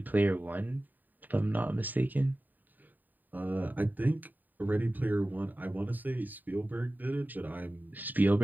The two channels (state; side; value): late; left; 0.087 ms